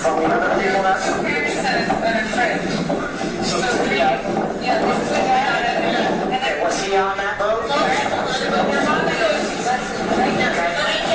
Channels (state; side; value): identical; both; correlation 1.00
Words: From the other people that's... Okay, was he on that boat?